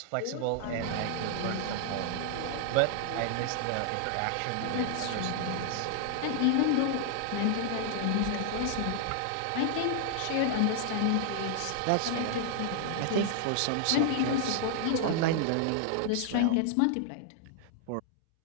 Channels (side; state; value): both; different; correlation 0.00